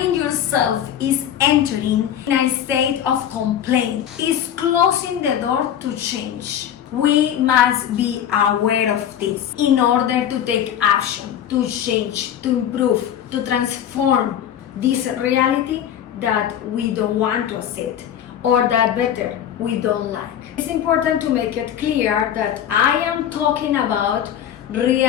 yourself is entering in a state of complaint, is closing the door to change. We must be aware of this in order to take action, to change, to improve, to transform this reality that we don't want to accept, or that better, we don't like. It's important to make it clear that I am talking about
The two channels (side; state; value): right; quieter; 10.0 dB